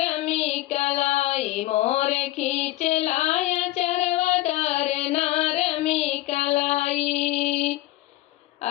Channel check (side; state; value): right; quieter; 16.8 dB